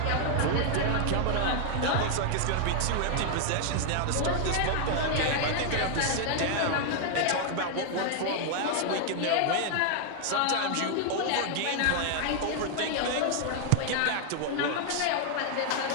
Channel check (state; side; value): different; both; correlation 0.00